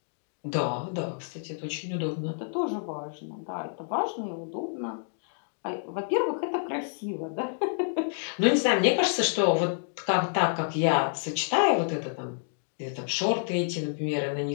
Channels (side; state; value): right; silent; digital silence